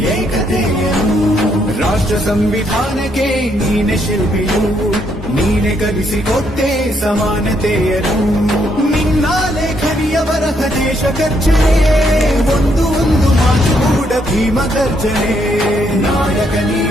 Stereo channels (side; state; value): both; normal; correlation 0.73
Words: ಏಕತೆಯನು ರಾಷ್ಟ್ರ ಸಂವಿಧಾನಕ್ಕೆ ನೀನೆ ಶಿಲ್ಪಿಯು ನೀನೆ ಕಲಿಸಿಕೊಟ್ಟೆ ಸಮಾನತೆಯನು ನಿನ್ನ ಲೇಖನಿಯ ಬರಹ ದೇಶ ಗರ್ಜನೆ ಒಂದು ಮಾತು ಕೂಡ ಭೀಮ ಗರ್ಜನೆ ನಾಯಕ